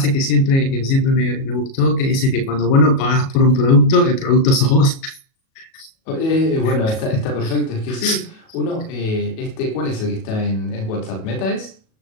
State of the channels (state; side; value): late; right; 37 ms